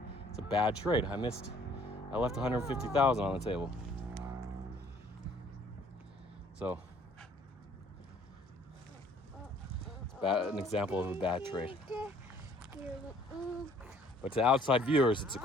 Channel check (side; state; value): both; normal; correlation 0.58